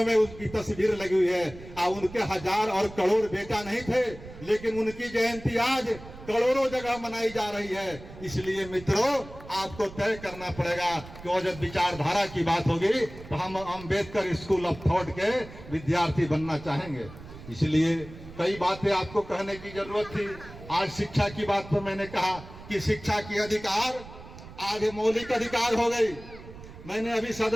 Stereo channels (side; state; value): right; noise; rumble, 16 dB below the sound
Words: में उनकी तस्वीर लगी हुई है। उनके हजार और करोड़ बेटा नहीं थे, लेकिन उनकी जयंती आज करोड़ों जगह मनाई जा रही है। इसलिए मित्रों, आपको तय करना पड़ेगा कि जब विचारधारा की बात होगी तो हम अंबेडकर स्कूल ऑफ थॉट के विद्यार्थी बनना चाहेंगे। इसलिए कई बातें आपको कहने की जरूरत थी। आज शिक्षा की बात पर मैंने कहा कि शिक्षा की अधिकार आज मौलिक अधिकार हो गई। मैंने अभी